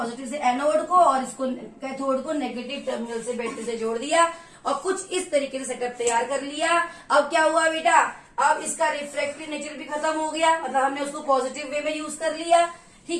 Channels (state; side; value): identical; both; correlation 1.00